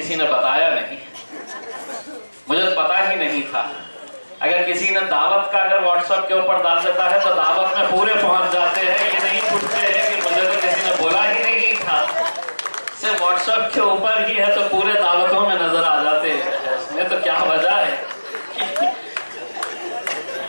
ने बताया नहीं, मुझे तो पता ही नहीं था। अगर किसी ने दावत का अगर व्हाट्सएप के ऊपर डाल देता है तो दावत में पूरे पहुंच जाते हैं, ये नहीं पूछते हैं कि मुझे तो किसी ने बोला ही नहीं था। सिर्फ व्हाट्सएप के ऊपर ही है तो पूरे दावतों में नजर आ जाते हैं। इसमें तो क्या वजह है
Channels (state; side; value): inverted; both; correlation -1.00